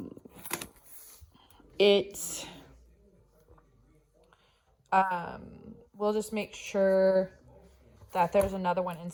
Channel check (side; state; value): both; identical; correlation 1.00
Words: it we'll just make sure that there's another one